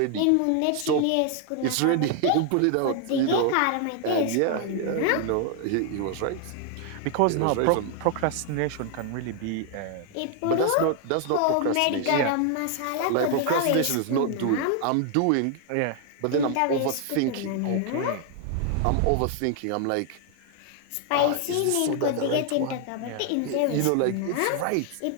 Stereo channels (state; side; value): different; both; correlation 0.00